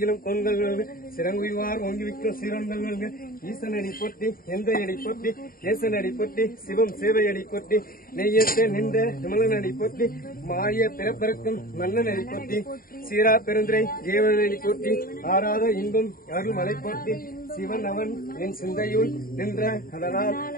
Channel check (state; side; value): late; right; 0.42 ms